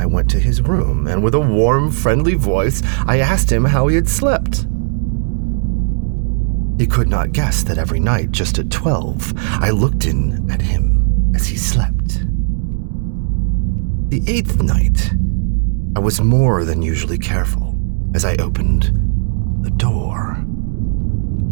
went to his room, and with a warm, friendly voice, I asked him how he had slept. He could not guess that every night, just at 12, I looked in at him as he slept. The 8th night, I was more than usually careful as I opened the door.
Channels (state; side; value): silent; left; digital silence